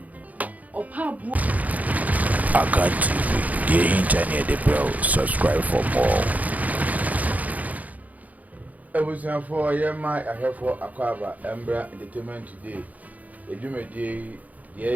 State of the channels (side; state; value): left; late; 0.076 ms